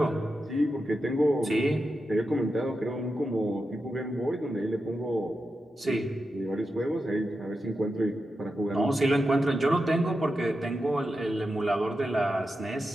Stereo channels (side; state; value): both; normal; correlation 0.89